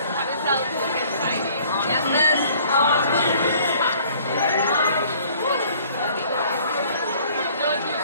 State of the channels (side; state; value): both; inverted; correlation -0.56